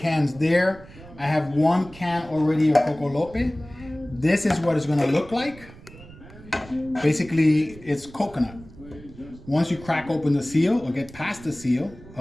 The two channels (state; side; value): noise; right; rumble, 19 dB below the sound